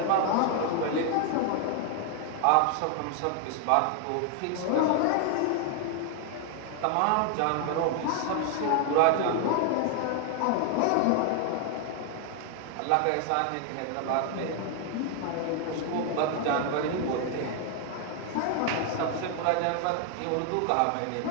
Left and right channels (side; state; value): both; different; correlation 0.00